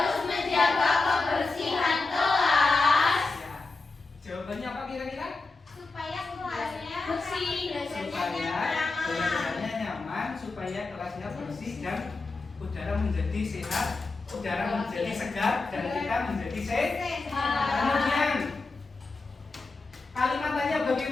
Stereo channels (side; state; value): right; quieter; 3.7 dB